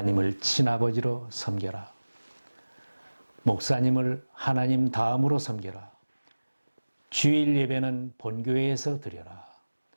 친아버지로 섬겨라. 목사님을 하나님 다음으로 섬겨라. 주일 예배는 본교회에서 드려라.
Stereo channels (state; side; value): inverted; both; correlation -1.00